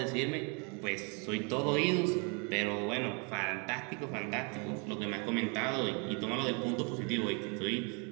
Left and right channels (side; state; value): left; quieter; 34.6 dB